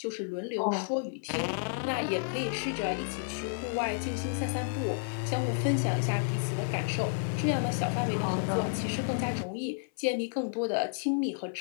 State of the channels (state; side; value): silent; right; 57 dB below the other